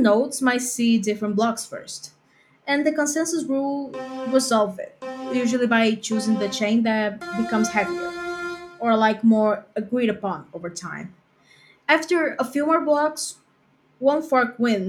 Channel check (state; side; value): identical; both; correlation 1.00